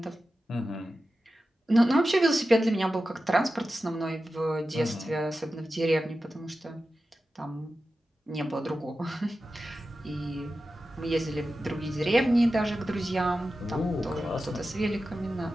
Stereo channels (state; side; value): normal; both; correlation 0.93